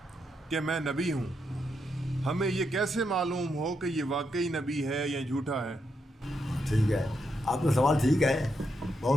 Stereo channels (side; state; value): both; normal; correlation 0.81